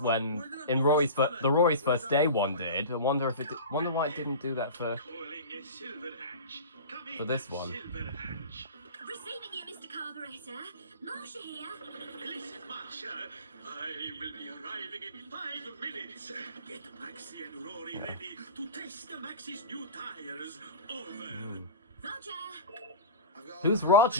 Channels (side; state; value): both; inverted; correlation -0.32